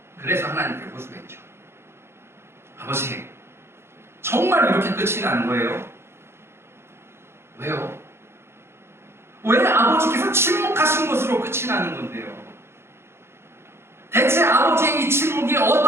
그래서 하나님께 호소했죠. 아버지, 정말 이렇게 끝이 난 거예요? 왜요? 왜 아버지께서 침묵하신 것으로 끝이 나는 건데요? 대체 아버지의 이 침묵이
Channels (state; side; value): late; left; 0.12 ms